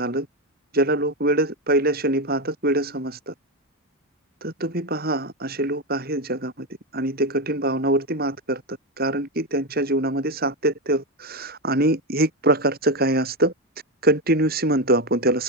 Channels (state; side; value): normal; both; correlation 0.11